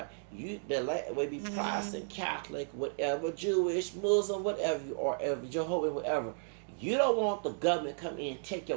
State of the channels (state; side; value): silent; left; digital silence